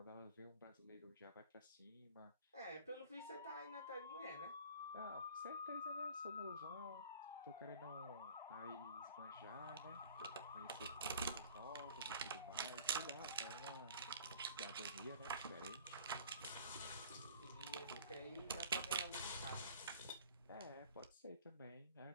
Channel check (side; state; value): both; inverted; correlation -0.47